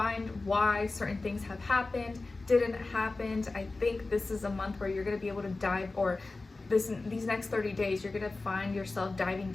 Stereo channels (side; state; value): right; quieter; 3.4 dB